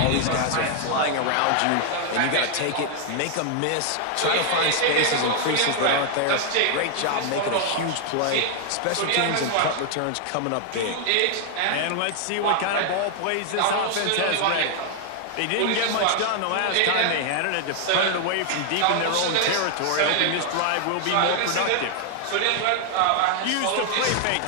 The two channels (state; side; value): different; both; correlation 0.00